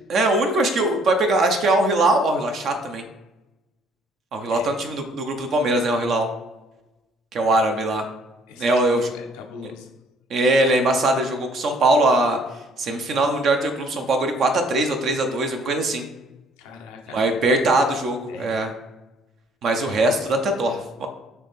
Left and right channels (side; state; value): both; normal; correlation 0.60